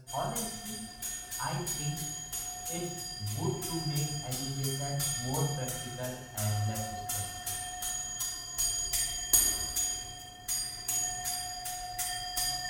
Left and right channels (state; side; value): identical; both; correlation 1.00